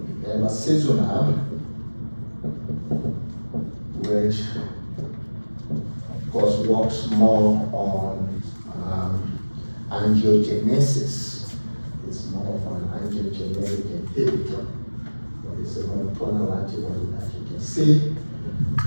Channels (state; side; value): inverted; both; correlation -1.00